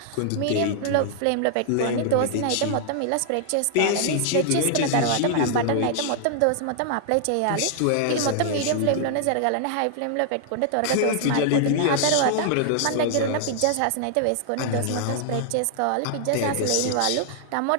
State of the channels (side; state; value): both; different; correlation -0.01